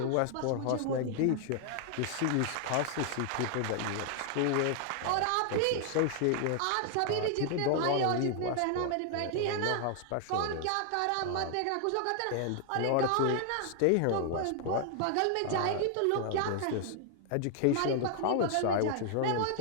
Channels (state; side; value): different; both; correlation 0.00